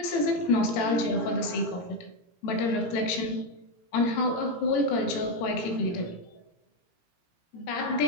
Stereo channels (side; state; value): right; late; 17 ms